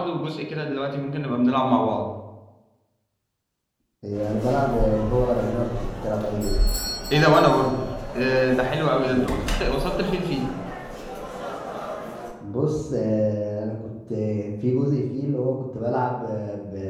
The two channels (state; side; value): identical; both; correlation 1.00